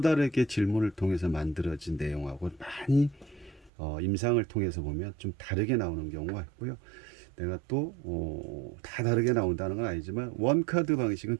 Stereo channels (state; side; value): drops out; left; at 3.7 s